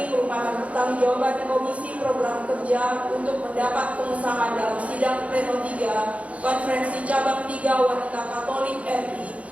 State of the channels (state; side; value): late; left; 0.065 ms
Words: merupakan pertanggungjawaban Komisi Program Kerja untuk mendapat pengesahan dalam sidang pleno 3 Konferensi Cabang 3 Wanita Katolik RI